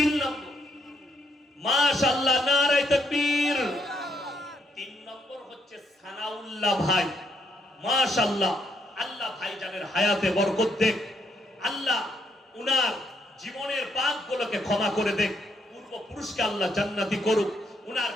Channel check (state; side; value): normal; both; correlation 0.74